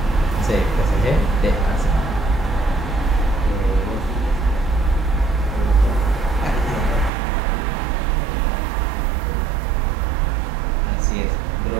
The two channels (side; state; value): left; drops out; at 7.1 s